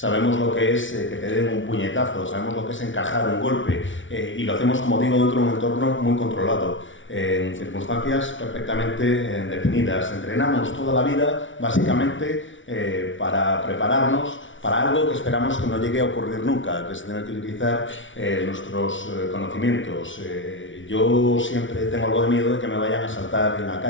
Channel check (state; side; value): late; right; 0.56 ms